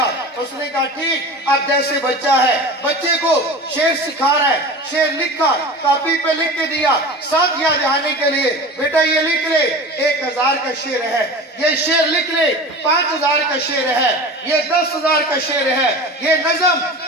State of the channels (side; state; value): both; normal; correlation 0.34